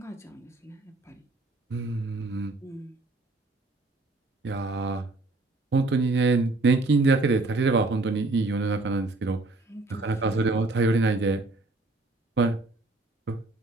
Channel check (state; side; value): quieter; left; 3.1 dB